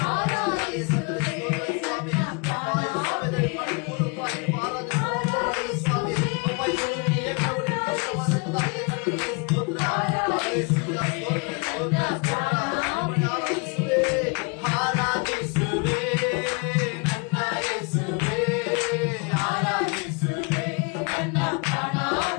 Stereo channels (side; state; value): right; quieter; 33.1 dB